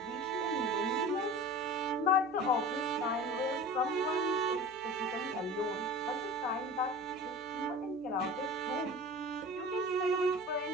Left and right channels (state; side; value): noise; left; hum, 28 dB below the sound